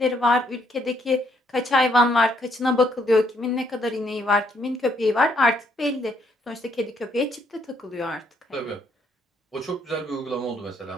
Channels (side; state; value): both; normal; correlation 0.70